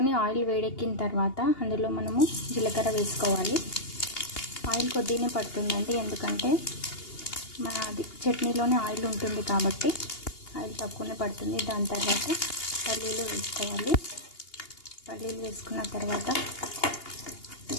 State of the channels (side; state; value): right; late; 2.8 ms